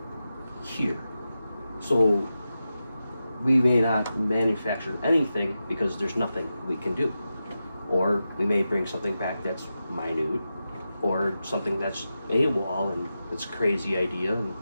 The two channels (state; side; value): inverted; both; correlation -0.91